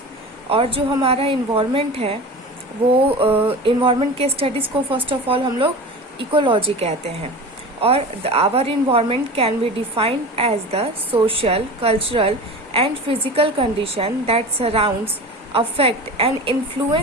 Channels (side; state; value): both; normal; correlation 0.32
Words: और जो हमारा environment है वो environment के स्टडीज़ को फर्स्ट ऑफ ऑल हम लोग इकोलॉजी कहते हैं. और our environment can be defined as the social, cultural and physical condition that surrounds, affect and